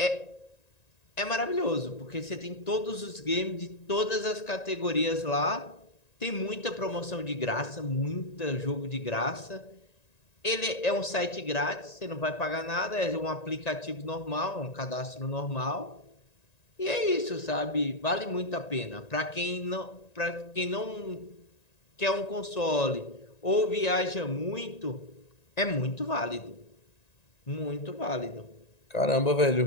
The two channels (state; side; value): late; right; 1.9 ms